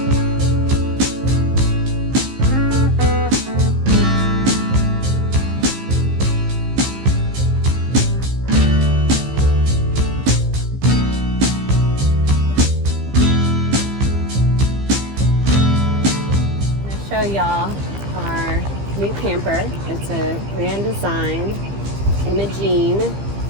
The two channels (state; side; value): late; left; 15 ms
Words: Show y'all our new camper. It's a Grand Design Imogene